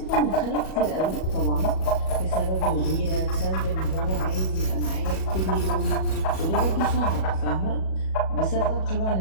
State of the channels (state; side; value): late; right; 37 ms